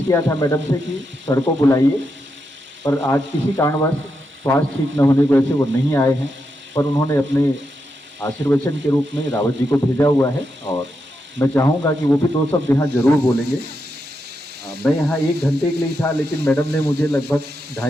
किया था मैडम से कि सर को बुलाइए, पर आज किसी कारणवश स्वास्थ्य ठीक न होने की वजह से वो नहीं आए हैं, पर उन्होंने अपने आशीर्वचन के रूप में रावत जी को भेजा हुआ है। और मैं चाहूँगा कि वो भी दो शब्द यहाँ जरूर बोलेंगे। मैं यहाँ 1 घंटे के लिए था, लेकिन मैडम ने मुझे लगभग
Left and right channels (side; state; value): both; normal; correlation 0.84